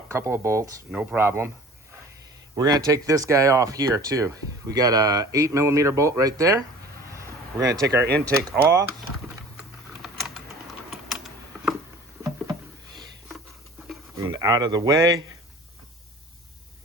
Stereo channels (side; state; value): both; normal; correlation 0.44